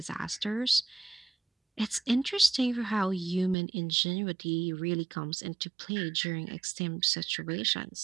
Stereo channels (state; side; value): drops out; left; at 3.6 s